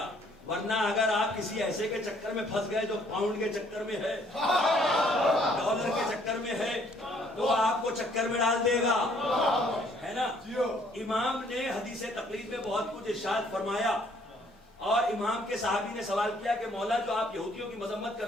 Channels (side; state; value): both; normal; correlation 0.63